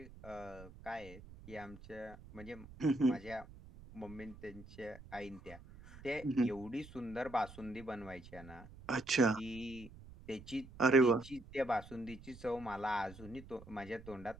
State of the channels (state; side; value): noise; right; rumble, 17 dB below the sound